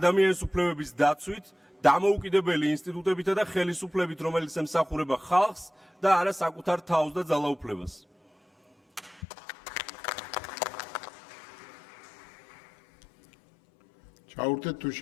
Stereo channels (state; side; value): drops out; right; at 9.2 s